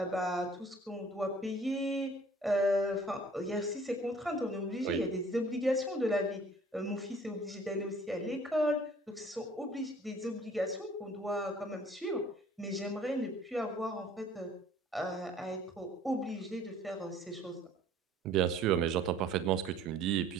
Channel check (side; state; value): both; normal; correlation 0.53